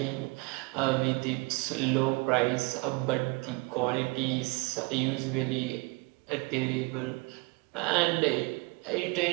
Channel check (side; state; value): left; quieter; 28.4 dB